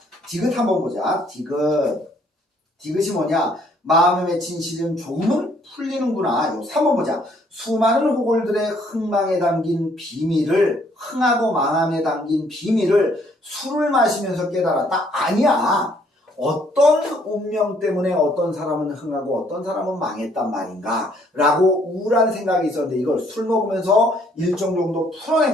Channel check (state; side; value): normal; both; correlation 0.65